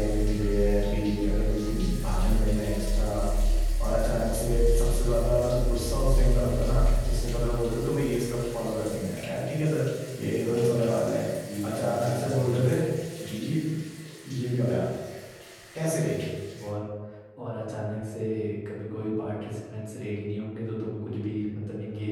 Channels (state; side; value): identical; both; correlation 1.00